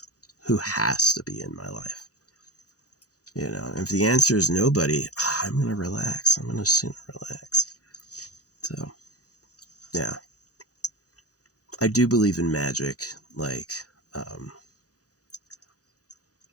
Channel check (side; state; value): right; late; 0.67 ms